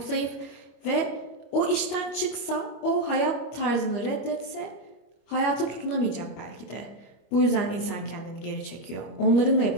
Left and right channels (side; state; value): right; late; 25 ms